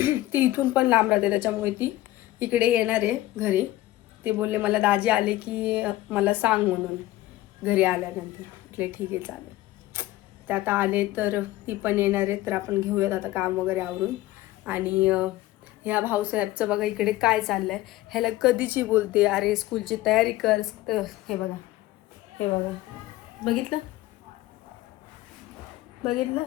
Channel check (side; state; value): right; quieter; 16.6 dB